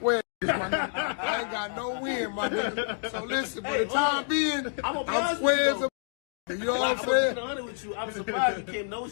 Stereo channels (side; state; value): right; silent; digital silence